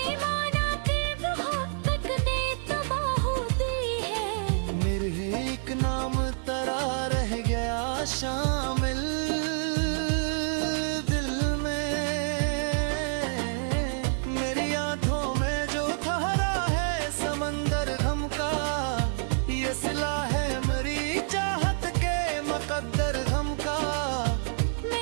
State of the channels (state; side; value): silent; left; digital silence